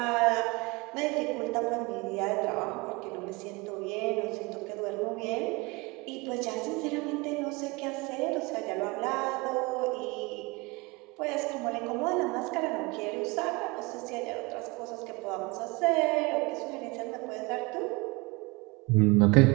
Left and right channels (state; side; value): quieter; left; 25.8 dB